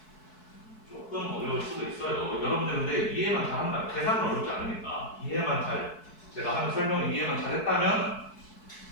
조금 어려울 수도 있어요. 여러분들 근데 이해만 잘한다. 계산은 어렵지 않으니까 이해만 잘, 제가 하는 설명을 이해만 잘했다면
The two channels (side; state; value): right; late; 4.6 ms